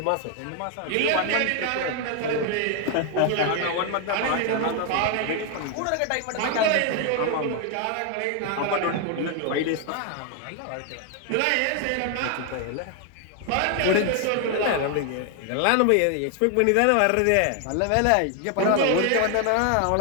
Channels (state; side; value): different; both; correlation 0.00